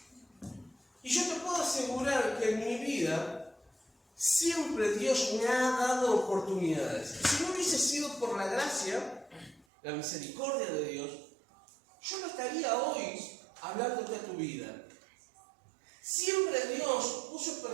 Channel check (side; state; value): left; drops out; at 9.7 s